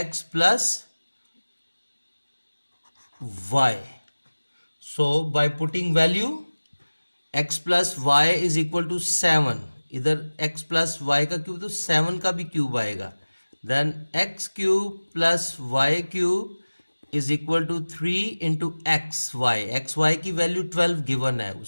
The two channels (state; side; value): inverted; both; correlation -1.00